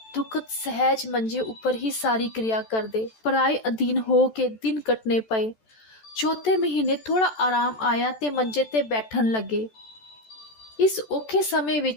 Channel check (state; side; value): late; right; 14 ms